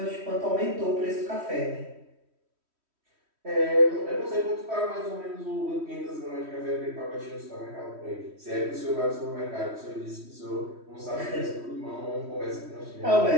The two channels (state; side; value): late; left; 3.1 ms